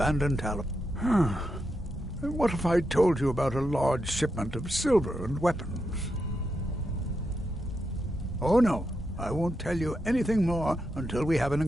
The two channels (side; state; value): both; normal; correlation 0.85